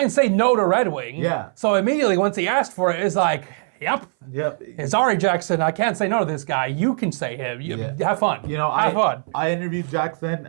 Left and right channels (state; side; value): silent; left; 59 dB below the other